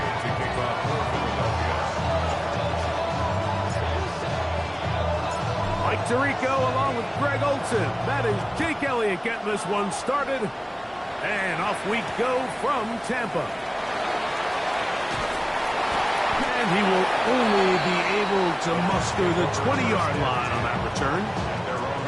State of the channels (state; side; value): identical; both; correlation 1.00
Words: kick off for Philadelphia. Mike Tirico along with Greg Olsen. That is Jake Elliott getting this one started. And off we go from Tampa. And he will only be able to muster the 20-yard line on that return. At their own